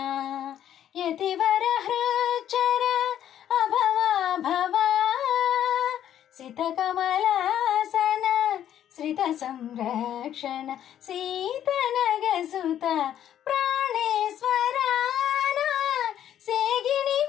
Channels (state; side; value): quieter; right; 10.7 dB